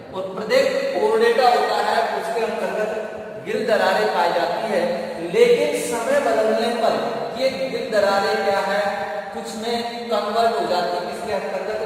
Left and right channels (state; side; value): identical; both; correlation 1.00